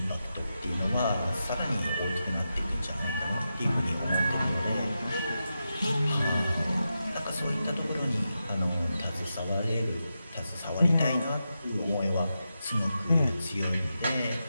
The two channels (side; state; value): both; inverted; correlation -0.89